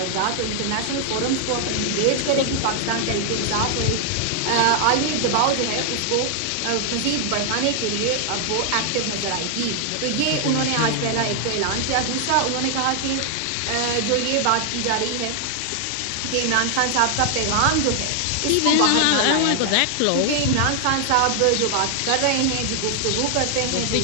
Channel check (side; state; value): both; different; correlation 0.00